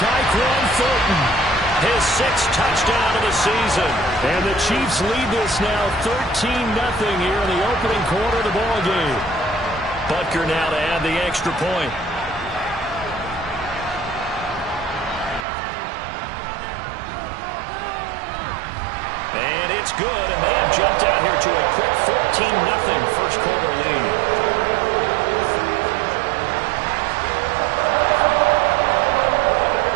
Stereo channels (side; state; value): left; drops out; at 15.5 s